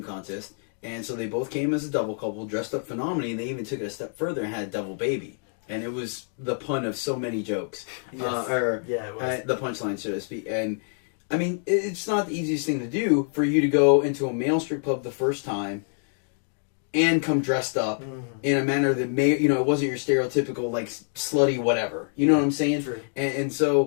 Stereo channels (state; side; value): silent; right; 58 dB below the other